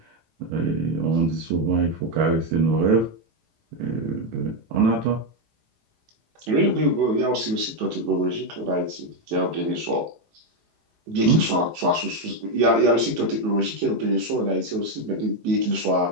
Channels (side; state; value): left; late; 18 ms